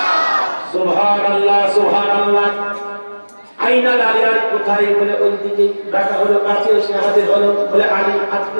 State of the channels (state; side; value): inverted; both; correlation -1.00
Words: সুবহানাল্লাহ সুবহানাল্লাহ। আইনাল আলিয়ার কোথায় বলে ওই দিকে ডাকা হলো, কাছে এসে হাজির হলো, বলে আলী আজকে